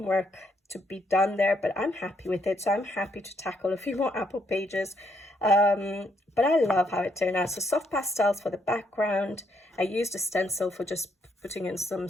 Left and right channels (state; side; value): normal; both; correlation 0.73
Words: work to be done there, but I'm happy with it. So I'm happy to tackle a few more apple pages. But I love how it turned out. So soft pastels for the background. I used a stencil for just putting in some